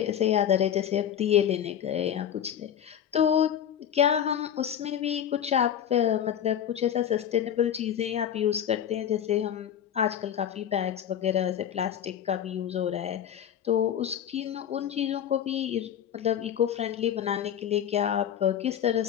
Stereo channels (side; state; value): right; quieter; 9.6 dB